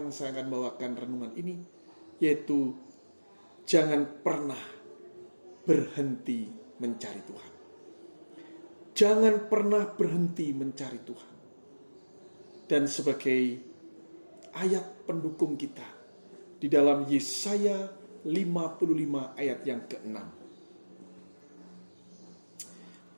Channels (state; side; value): inverted; both; correlation -1.00